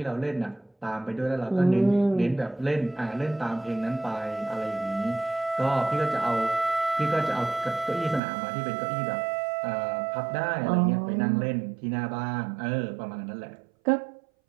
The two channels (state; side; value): drops out; left; at 8.2 s